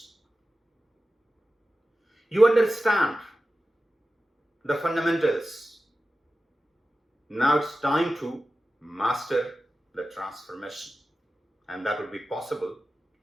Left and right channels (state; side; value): normal; both; correlation 0.94